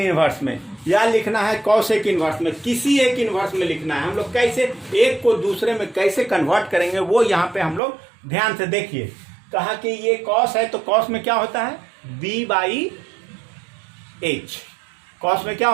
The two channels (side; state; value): left; drops out; at 7.8 s